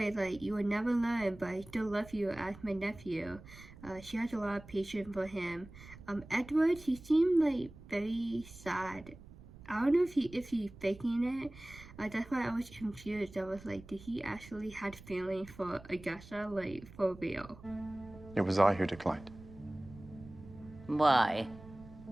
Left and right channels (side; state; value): right; noise; rumble, 18 dB below the sound